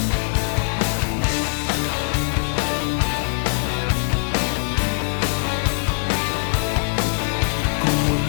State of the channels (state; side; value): silent; right; digital silence